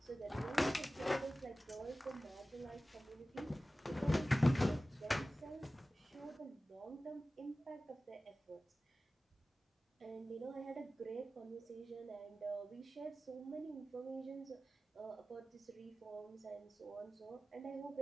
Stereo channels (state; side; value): normal; both; correlation 0.96